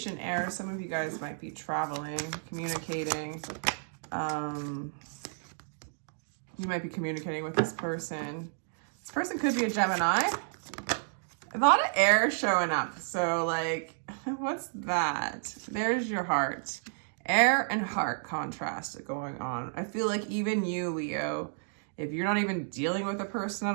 error. Some of you guys might be traveling, communicating. You might be communicating with this person. This person could be a Gemini. A lot of air showing up. So like, what's that? There's your heart. Air and heart contrast going on. I feel like even you, Leo, if you're not even dealing with a person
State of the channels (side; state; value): left; silent; digital silence